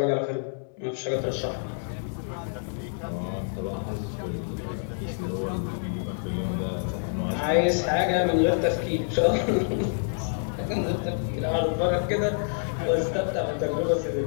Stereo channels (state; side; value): silent; right; digital silence